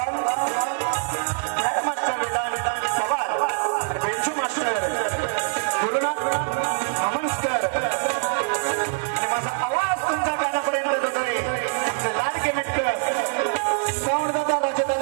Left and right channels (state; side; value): silent; left; 59 dB below the other